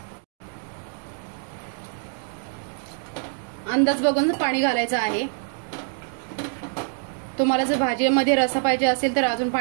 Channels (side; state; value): left; silent; 55 dB below the other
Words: अंदाज बघून पाणी घालायचं आहे। तुम्हाला जर भाजीमध्ये रस्सा पाहिजे असेल तर अजून